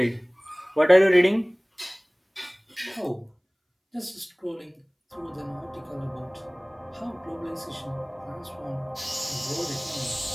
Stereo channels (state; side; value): identical; both; correlation 1.00